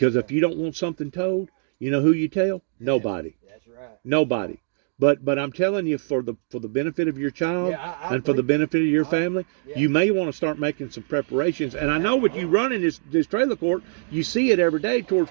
if you don't want something told, you know who you tell? Nobody. That's right. Nobody. But I'm telling you, for the benefit of your child and for the benefit of your family, you may want to start making some preparations. And I know with you running this trailer court, you see it every day towards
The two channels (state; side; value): silent; left; digital silence